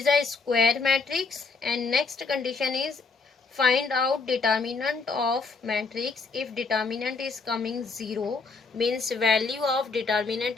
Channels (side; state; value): right; quieter; 4.4 dB